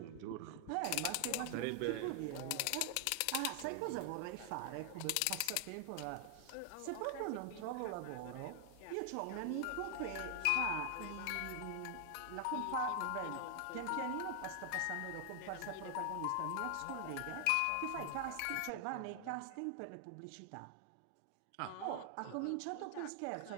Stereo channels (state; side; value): different; both; correlation 0.00